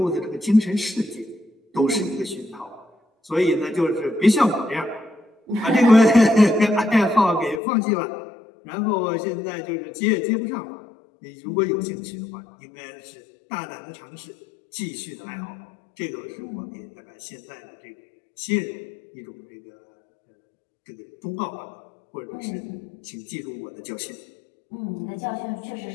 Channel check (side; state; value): right; drops out; at 7.6 s